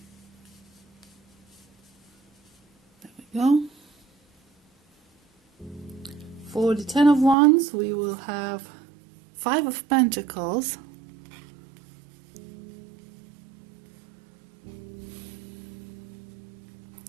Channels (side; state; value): left; drops out; at 7.4 s